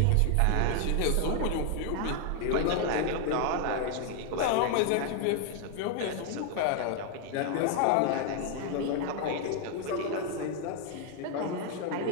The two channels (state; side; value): different; both; correlation 0.00